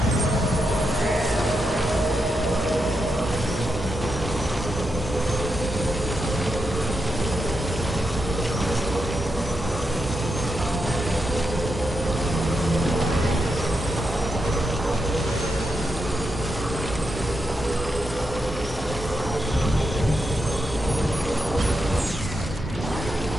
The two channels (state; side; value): normal; both; correlation 0.85